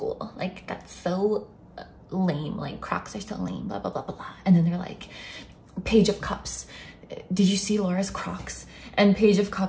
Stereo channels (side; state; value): both; identical; correlation 1.00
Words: Like, that's so lame. Like, Crocs are so lame, blah, blah, blah, blah, blah. And then they're like, Page of Cups, did you see Laura's Crocs? And Page of